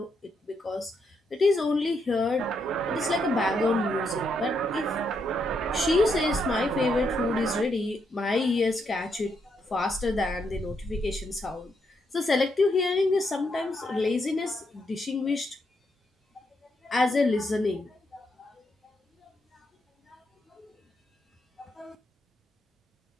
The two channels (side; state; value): both; normal; correlation 0.79